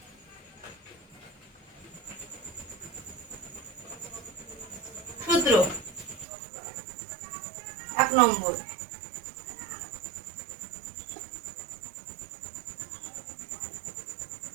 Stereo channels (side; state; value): left; drops out; at 6.2 s